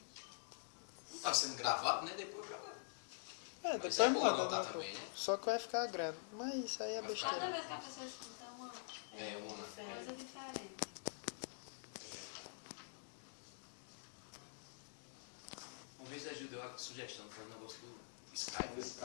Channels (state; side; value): silent; right; digital silence